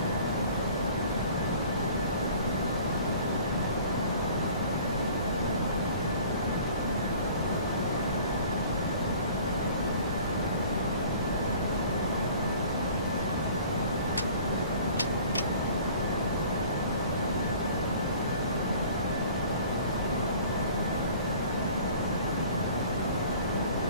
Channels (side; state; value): both; inverted; correlation -0.48